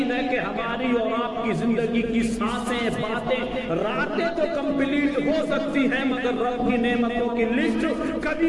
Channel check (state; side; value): identical; both; correlation 1.00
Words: ہے کہ ہماری اور آپ کی زندگی کی سانسیں، باتیں، راتیں تو کمپلیٹ ہو سکتی ہیں، مگر رب کی نعمتوں کی لسٹ کبھی